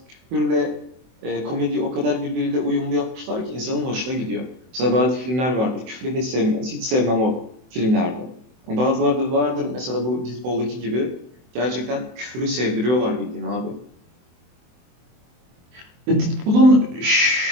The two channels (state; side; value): late; left; 24 ms